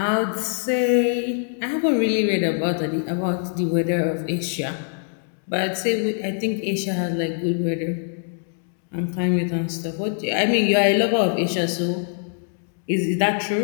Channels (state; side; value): silent; right; digital silence